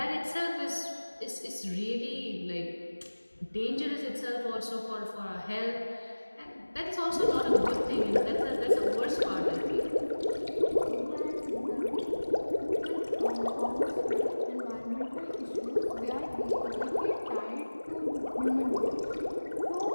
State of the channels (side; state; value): both; inverted; correlation -1.00